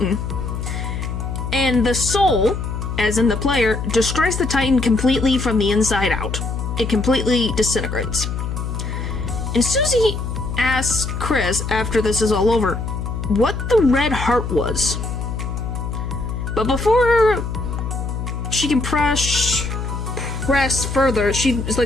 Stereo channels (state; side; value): noise; left; hum, 4 dB below the sound